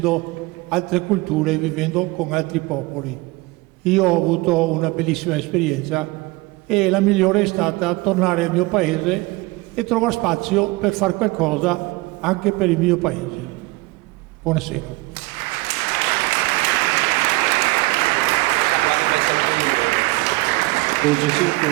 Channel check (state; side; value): quieter; left; 22.4 dB